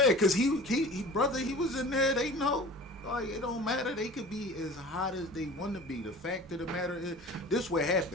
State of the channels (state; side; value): normal; both; correlation 0.41